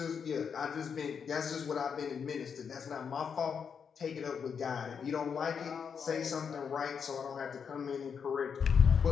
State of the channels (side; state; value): right; quieter; 6.7 dB